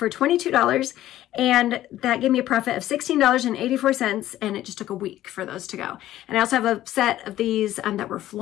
$22, and that gave me a profit of $16.84, and it just took a week for those to go. And I also have a set of these that were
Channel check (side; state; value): right; quieter; 13.7 dB